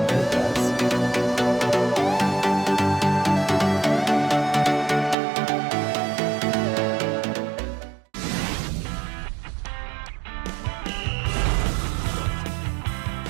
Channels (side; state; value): left; drops out; at 5.2 s